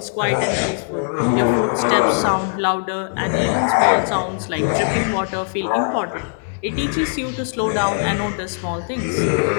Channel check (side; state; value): right; silent; 62 dB below the other